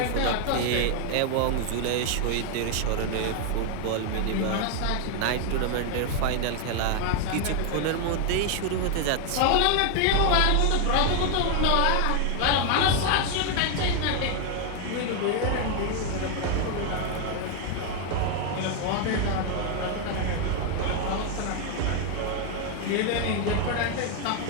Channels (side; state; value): both; different; correlation 0.01